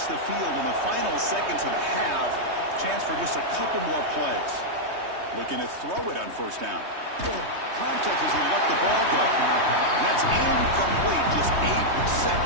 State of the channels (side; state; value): left; late; 3.2 ms